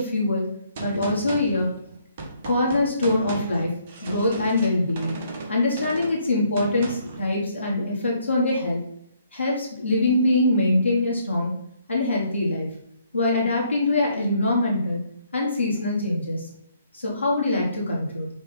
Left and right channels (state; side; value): inverted; both; correlation -0.68